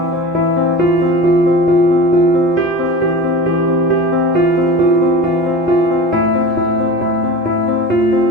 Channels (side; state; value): both; normal; correlation 0.33